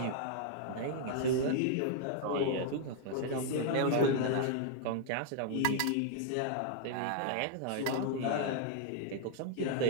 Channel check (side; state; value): both; different; correlation -0.01